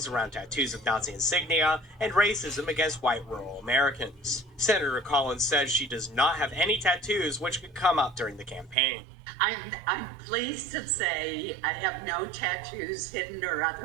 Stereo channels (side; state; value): left; drops out; at 8.8 s